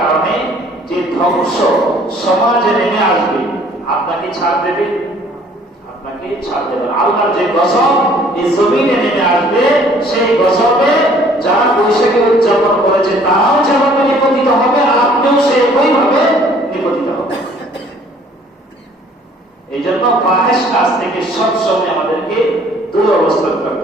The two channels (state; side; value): normal; both; correlation 0.57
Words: কারণে যে ধ্বংস সমাজে নেমে আসবে, আপনাকে ছাড় দেবে? আপনাকে ছাড় দেবে। আল্লাহর যে গজব এই জমিনে নেমে আসবে, সেই গজবে যারা বৈশাখী উদযাপন করেছে তারাও যেভাবে নিপতিত হবে, আপনিও সেইভাবে নিপতিত হবে। এই জন্য ফাহেশ কাজ থেকে সবসময় আমাদেরকে দূর অবস্থান